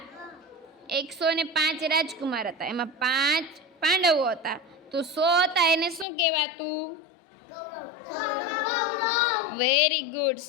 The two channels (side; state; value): right; drops out; at 6.1 s